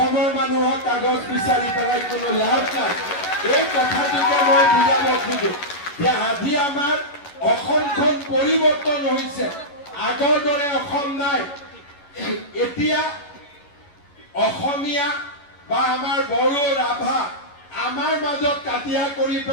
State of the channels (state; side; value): late; right; 11 ms